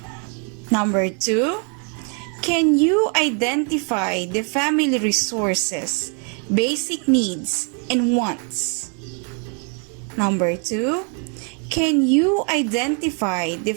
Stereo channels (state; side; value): quieter; left; 39.9 dB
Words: Number 2, can you identify the family resources, basic needs, and wants? Number 2, can you identify the